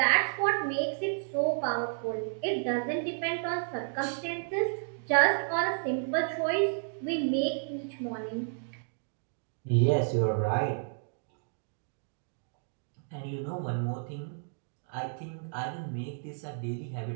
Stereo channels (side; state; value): left; silent; digital silence